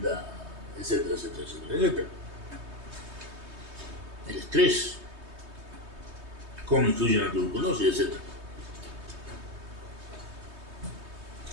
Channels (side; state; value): left; late; 3.2 ms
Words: etcétera, etcétera, etcétera, etcétera. El estrés, cómo influye en la tuberculosis, etcétera.